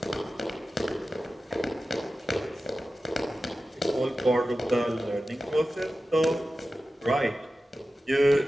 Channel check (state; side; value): normal; both; correlation 0.94